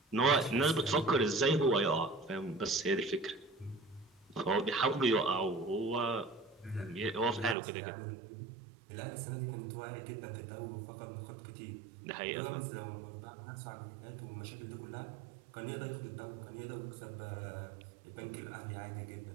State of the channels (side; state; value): left; drops out; at 7.6 s